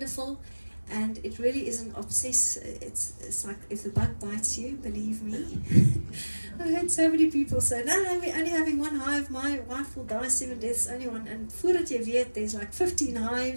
and it really isn't it's like if the bug bites you, believe me. I've heard so many people say, no, we're only having one hive, my wife will die 7 deaths, only one, and voordat jy weet, there's like 15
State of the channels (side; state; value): both; inverted; correlation -1.00